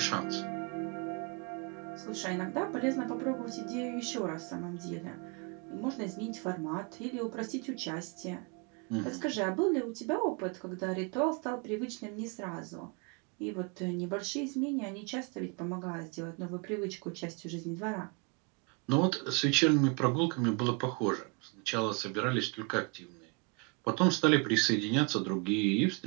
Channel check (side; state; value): left; quieter; 31.5 dB